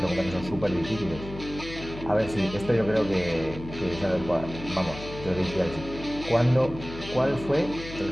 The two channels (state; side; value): noise; left; hum, 12 dB below the sound